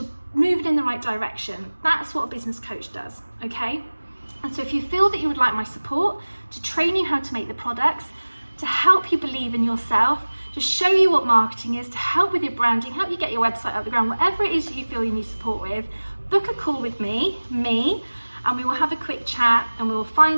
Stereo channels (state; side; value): inverted; both; correlation -1.00